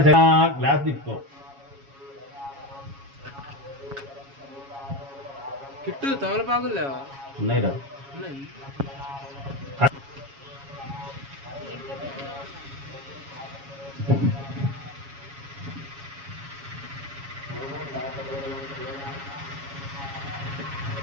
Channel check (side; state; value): left; late; 7.2 ms